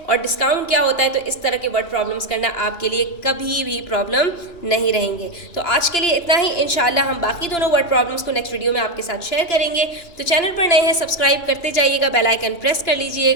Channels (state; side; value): late; right; 2.9 ms